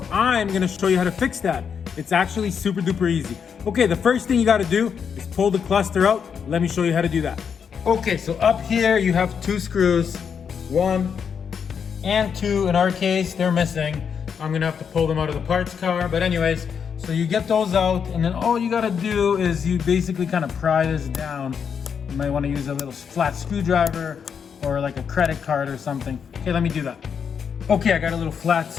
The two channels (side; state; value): right; quieter; 7.0 dB